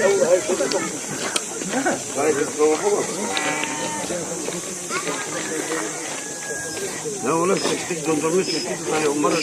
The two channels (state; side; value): identical; both; correlation 1.00